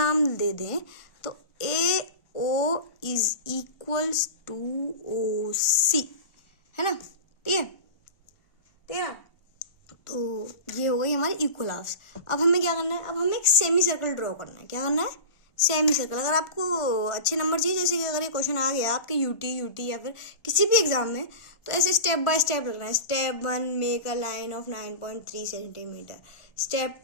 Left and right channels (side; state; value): right; late; 1.4 ms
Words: दे दें तो AO is equals to OC, है ना। ठीक है। तो ये हो गई हमारी इक्वल हाफ्स। अब हमें क्या करना है? अब हमें एक सेमी सर्कल ड्रॉ करना है। क्या करना है? Semi circle. अगर आपको अच्छे नंबर चाहिए, जैसे कि अगर ये क्वेश्चन आ गया आपके यूटी या फिर किसी भी एग्जाम में, तो ऐसे स्टेप बाय स्टेप रखना है। Step 1 make a line of 9.3 centimetre. Step